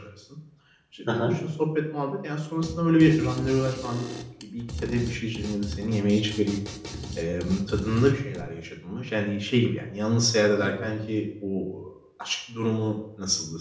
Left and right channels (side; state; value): both; identical; correlation 1.00